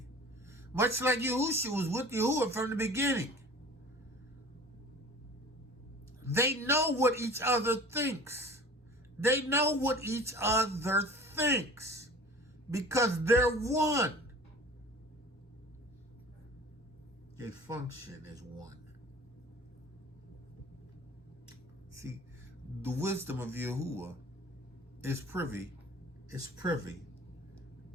Much like Yahusha was with Yahuwah from the beginning. They know what each other thinks. They know what each other thinks. Because they're one. They function as one. See, the wisdom of Yahuwah is privy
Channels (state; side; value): normal; both; correlation 0.43